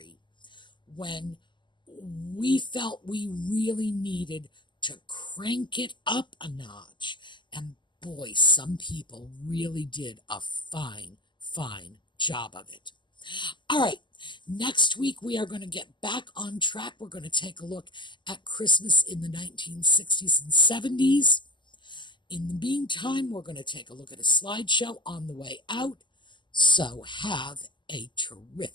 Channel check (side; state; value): right; late; 0.22 ms